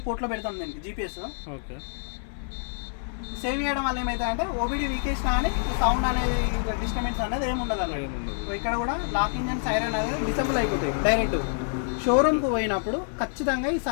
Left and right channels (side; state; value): right; silent; 55 dB below the other